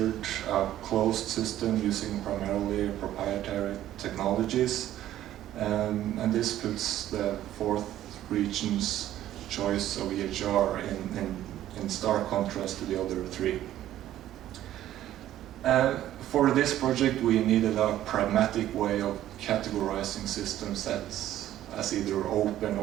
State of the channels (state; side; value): quieter; left; 12.8 dB